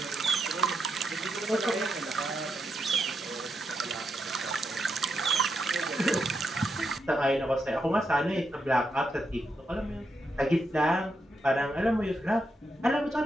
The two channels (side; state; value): both; normal; correlation 0.82